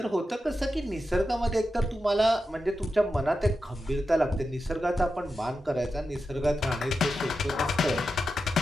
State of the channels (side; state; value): both; normal; correlation 0.90